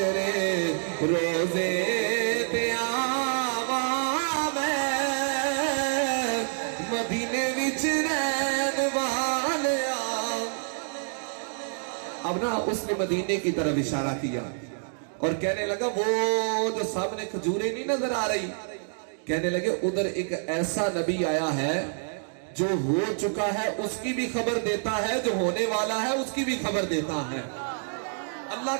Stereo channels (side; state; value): left; silent; digital silence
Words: روزے تیاواں میں مدینے وچ رہن والیا. اب نا اس نے مدینے کی طرف اشارہ کیا اور کہنے لگا وہ جو سامنے کھجوریں نہیں نظر آ رہی, کہنے لگے ادھر ایک ایسا نبی آیا ہے جو ہو چکا ہے اس کی بھی خبر دیتا ہے, جو ہونے والا ہے اس کی بھی خبر دیتا ہے. اللہ